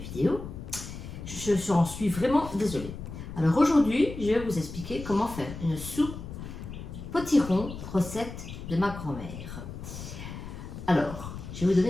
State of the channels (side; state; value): left; noise; rumble, 10 dB below the sound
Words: vidéo. Je en suis vraiment désolée. Alors aujourd'hui, je vais vous expliquer comment faire une soupe potiron, recette de ma grand-mère. Alors, je vais vous